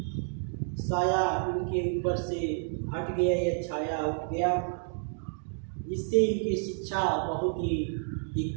साया इनके ऊपर से हट गया, यह छाया उठ गया, जिससे इनकी शिक्षा बहुत ही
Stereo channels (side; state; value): left; silent; 58 dB below the other